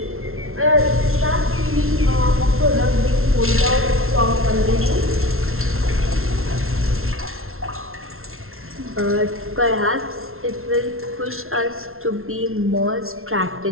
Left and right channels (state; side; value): late; left; 0.62 ms